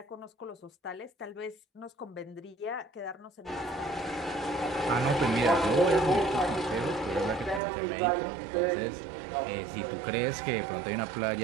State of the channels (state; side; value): drops out; left; at 7.6 s